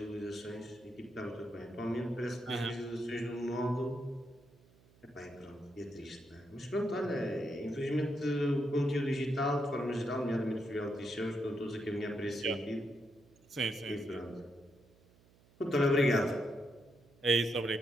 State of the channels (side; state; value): right; noise; hum, 29 dB below the sound